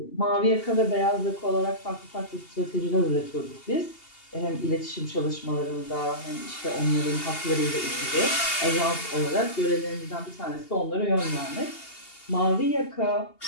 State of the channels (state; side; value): late; right; 2.8 ms